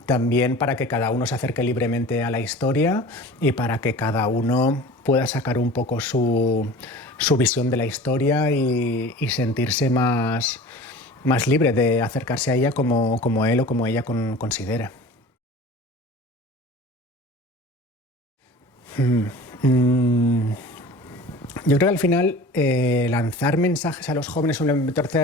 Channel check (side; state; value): both; normal; correlation 0.40